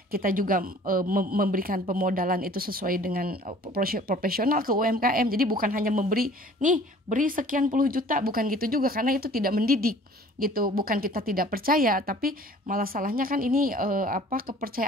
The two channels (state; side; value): normal; both; correlation 0.50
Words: Kita juga memberikan pemodalan itu sesuai dengan profesional ke UMKM. Jadi bukan hanya memberi, nih beri sekian puluh juta, bukan gitu juga, karena itu tidak mendidik gitu. Bukan kita tidak percaya, tapi malah salahnya kan ini